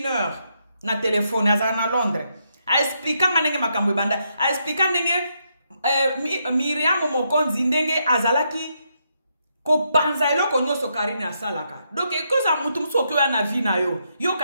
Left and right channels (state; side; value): inverted; both; correlation -0.79